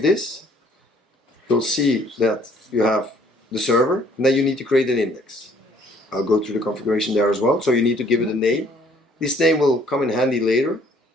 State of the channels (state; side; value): normal; both; correlation 0.61